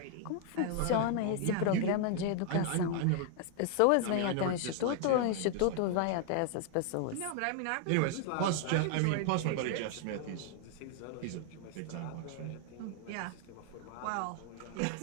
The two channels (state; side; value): different; both; correlation 0.00